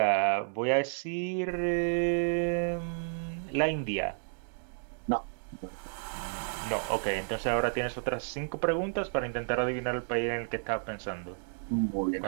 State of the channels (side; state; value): left; silent; digital silence